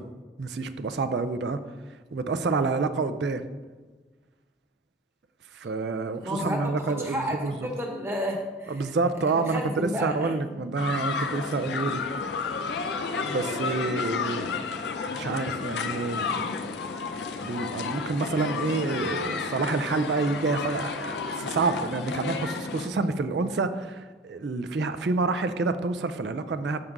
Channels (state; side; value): normal; both; correlation 0.32